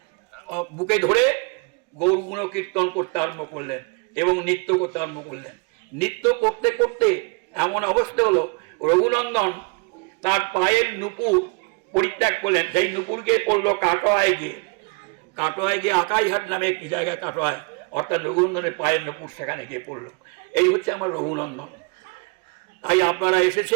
বুকে ধরে গৌর গুণ কীর্তন করতে আরম্ভ করলেন এবং নৃত্য করতে আরম্ভ করলেন। নৃত্য করতে করতে এমন অবস্থা হলো, রঘুনন্দন তার পায়ের নুপুর পরিত্যাগ করলেন, সেই নুপুরকে পড়লো কাটোয়ায় গিয়ে আকাইহাট নামে একটি জায়গায় কাটোয়ায়, অর্থাৎ রঘুনন্দনের পায়ের নুপুর সেখানে গিয়ে পড়লো। এই হচ্ছে আমার রঘুনন্দন। তাই আপনারা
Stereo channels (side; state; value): left; quieter; 31.4 dB